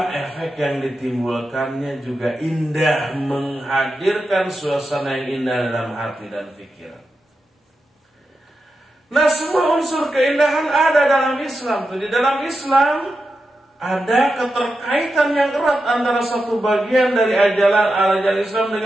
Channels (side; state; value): both; normal; correlation 0.89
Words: efek yang ditimbulkannya juga indah, menghadirkan suasana yang indah dalam hati dan pikiran. Nah, semua unsur keindahan ada dalam Islam. Di dalam Islam ada keterkaitan yang erat antara satu bagian dari ajaran Islam